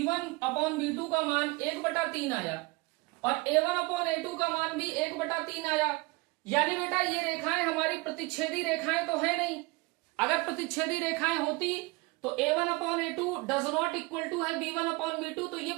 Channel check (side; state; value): left; quieter; 24.9 dB